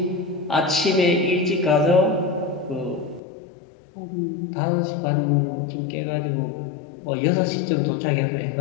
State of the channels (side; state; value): right; drops out; at 3.2 s